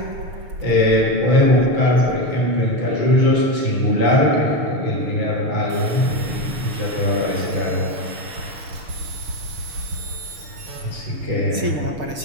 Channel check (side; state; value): left; late; 6.6 ms